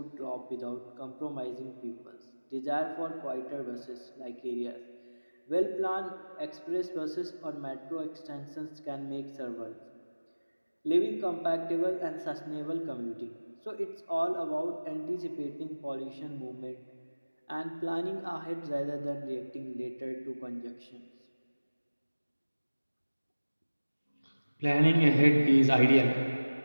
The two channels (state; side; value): inverted; both; correlation -1.00